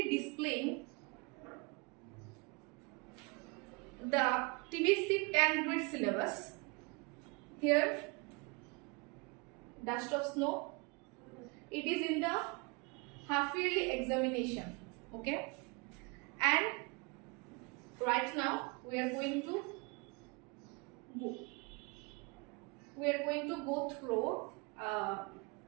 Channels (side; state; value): left; quieter; 30.1 dB